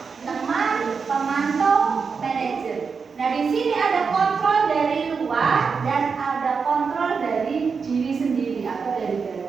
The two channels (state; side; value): quieter; left; 5.4 dB